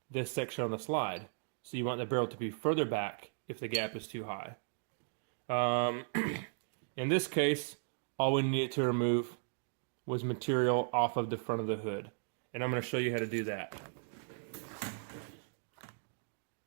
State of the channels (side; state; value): left; silent; digital silence